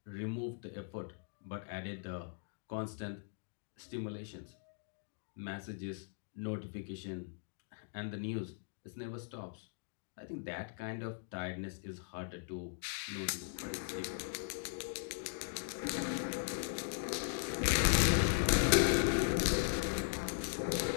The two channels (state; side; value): silent; right; digital silence